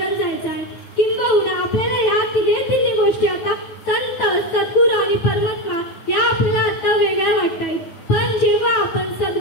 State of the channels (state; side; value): late; right; 9.2 ms